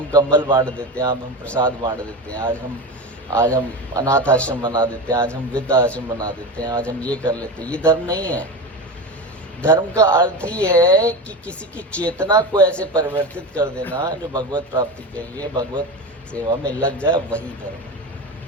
कंबल बांट देते हैं, आज हम प्रसाद बांट देते हैं, आज हम अनाथ आश्रम बना देते हैं, आज हम वृद्ध आश्रम बना देते हैं, आज हम ये कर लेते हैं। ये धर्म नहीं है। धर्म का अर्थ ही है कि किसी की चेतना को ऐसे परिवर्तित कर देना जो भगवत प्राप्ति के लिए भगवत सेवा में लग जाए, वही धर्म है।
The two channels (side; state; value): both; normal; correlation 0.23